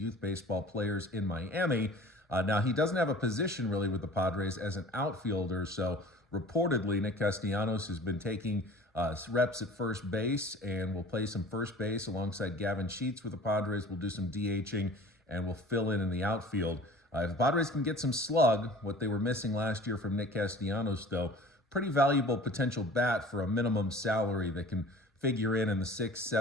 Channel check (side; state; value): both; normal; correlation 0.44